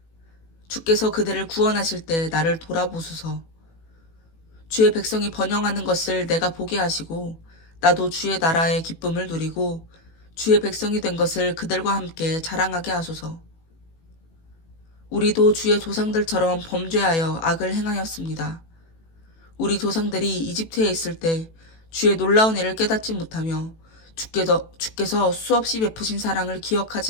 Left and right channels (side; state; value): right; late; 18 ms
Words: 주께서 그들을 구원하실 때 나를 돌아보소서. 주의 백성이 번영하는 것을 내가 보게 하시고 나도 주의 나라의 기쁨을 누리고 주의 백성이 된 것을 그들과 함께 자랑하게 하소서. 우리도 주의 조상들처럼 범죄하여 악을 행하였습니다. 우리 조상들이 이집트에 있을 때 주의 놀라운 일을 깨닫지 못하며 주께서 수없이 베푸신 사랑을